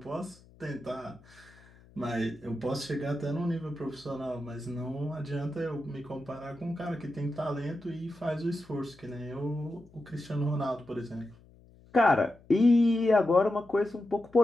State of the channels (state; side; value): noise; left; hum, 25 dB below the sound